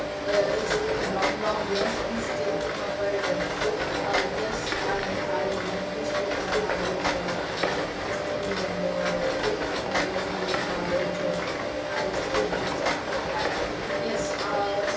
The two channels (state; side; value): identical; both; correlation 1.00